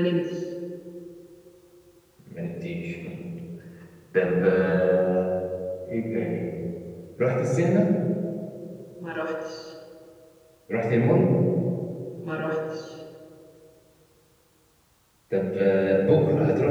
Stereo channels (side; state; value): both; identical; correlation 1.00